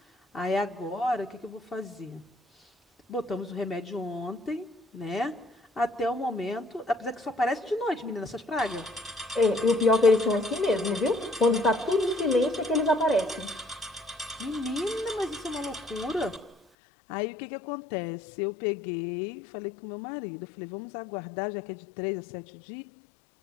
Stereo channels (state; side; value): drops out; right; at 16.6 s